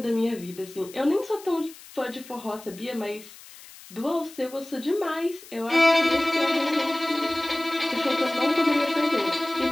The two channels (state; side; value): noise; left; hiss, 19 dB below the sound